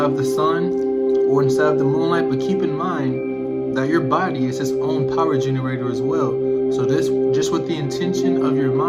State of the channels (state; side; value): identical; both; correlation 1.00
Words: of the sun or inside of the moonlight, but keep in mind that your body is its own power generator as well. So this, just with the intention of your